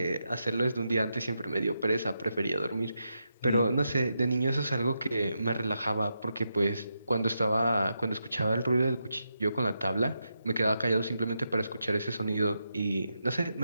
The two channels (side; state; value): both; inverted; correlation -0.85